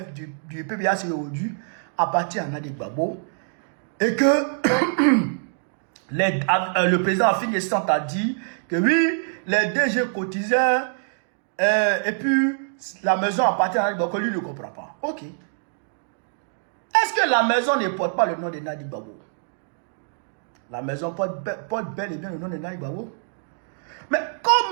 du PPACI aujourd'hui. appartient à Nadi Gbagbo et que le président Afin Gessant a dit que oui, les DG cotisaient et puis la maison appartient à Nadi Gbagbo, lui ne comprend pas. Ok. Est-ce que la maison ne porte pas le nom de Nadi Gbagbo? La maison porte bel et bien le nom de Nadi Gbagbo. Mais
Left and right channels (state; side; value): silent; left; digital silence